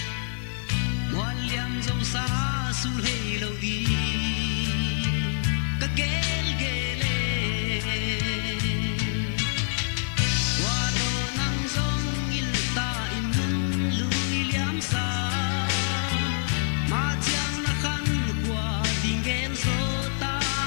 ngoan liang dâu xa su lê lâu đi cà ghê ghê lê qua đồ nắng giông in ta in nung lùi liam xa mà chẳng là khăn qua tình ghen số ta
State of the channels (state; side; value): silent; right; 61 dB below the other